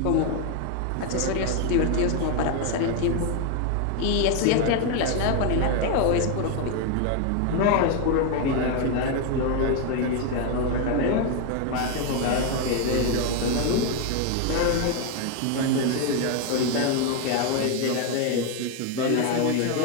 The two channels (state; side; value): different; both; correlation 0.01